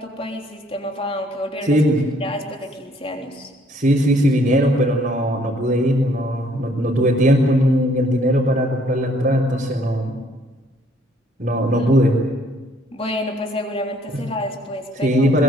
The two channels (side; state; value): both; normal; correlation 0.63